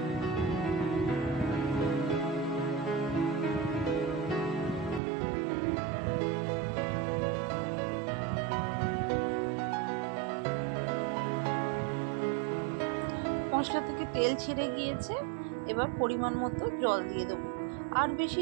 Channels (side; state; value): left; drops out; at 5.0 s